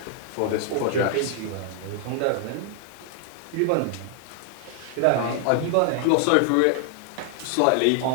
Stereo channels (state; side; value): different; both; correlation 0.00